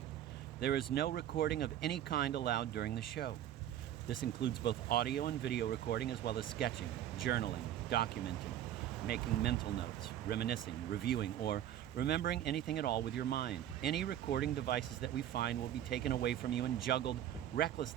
there is no recording of any kind allowed during the show. This includes both audio and video recording, as well as sketching, journaling, documenting, making mental notes, reminiscing, reviewing, or remembering anything at all with your mind. Any recording devices that we find will be taken away from you and juggled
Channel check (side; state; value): left; quieter; 11.4 dB